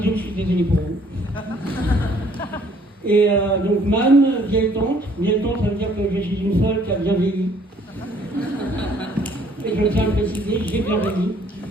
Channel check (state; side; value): normal; both; correlation 0.61